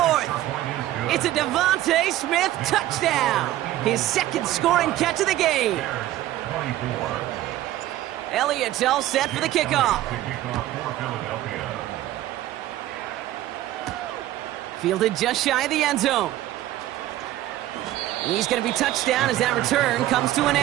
It's a Devontae Smith touchdown. His 2nd scoring catch of the game. Elliott's all set for the kickoff. Fielded just shy of the end zone. He's going to be touched down as that return comes to an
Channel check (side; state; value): left; quieter; 14.4 dB